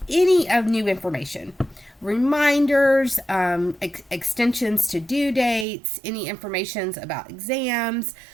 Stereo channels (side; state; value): left; drops out; at 5.7 s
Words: any of new information. Reminders, extensions to due dates, any informations about exams,